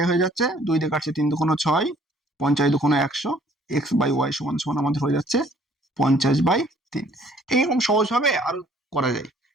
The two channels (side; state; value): both; normal; correlation 0.59